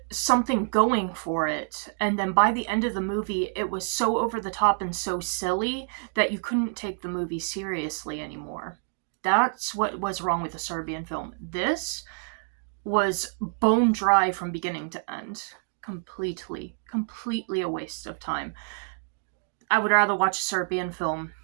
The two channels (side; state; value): left; silent; 60 dB below the other